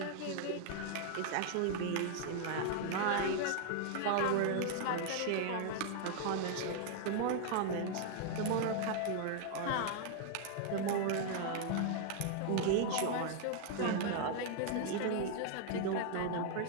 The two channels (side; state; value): both; different; correlation 0.00